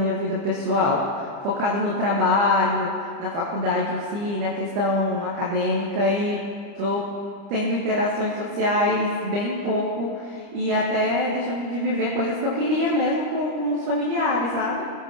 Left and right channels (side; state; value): left; late; 30 ms